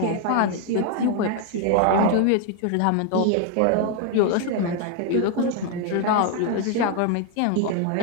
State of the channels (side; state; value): both; different; correlation 0.01